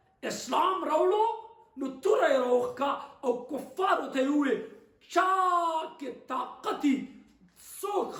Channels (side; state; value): both; identical; correlation 1.00